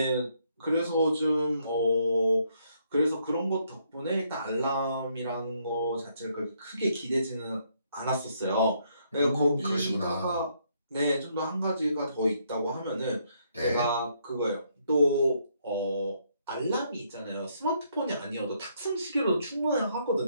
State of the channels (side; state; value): both; inverted; correlation -0.72